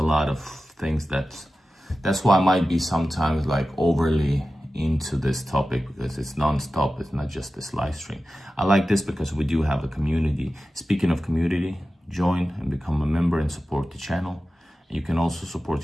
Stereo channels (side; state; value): both; normal; correlation 0.94